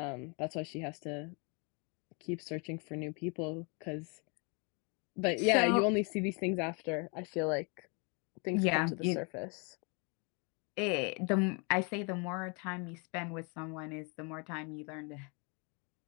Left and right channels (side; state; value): right; quieter; 34.3 dB